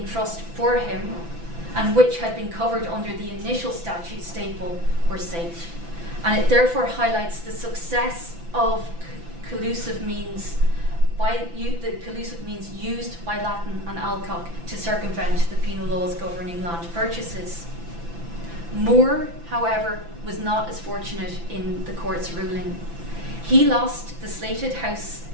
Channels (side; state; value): left; late; 5.9 ms